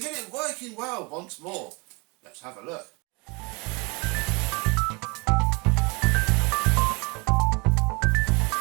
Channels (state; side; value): quieter; left; 29.3 dB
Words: it working well once more. Let's have a look.